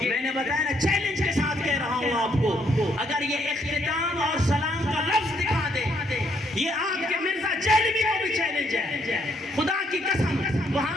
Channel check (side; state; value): both; normal; correlation 0.71